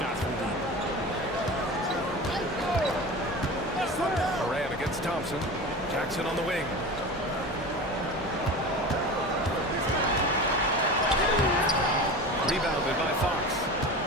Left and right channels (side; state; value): both; normal; correlation 0.31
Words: from deep. Morant against Thompson. Jackson on the wing. Rebounded by Fox.